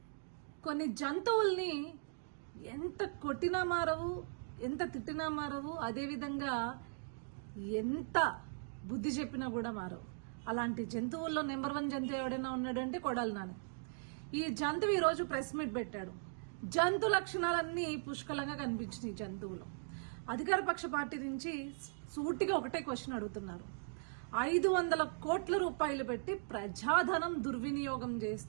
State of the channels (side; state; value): left; silent; digital silence